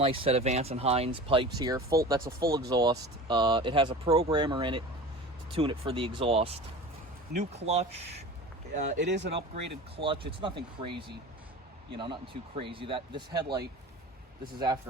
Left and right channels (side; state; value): both; normal; correlation 0.36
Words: set of Vance and Hines pipes here. That's a full exhaust. It has a programmer in it to tune it for the exhaust. New clutch. It is an upgraded clutch. It's nothing crazy, you know, nothing too crazy. This headlight, this is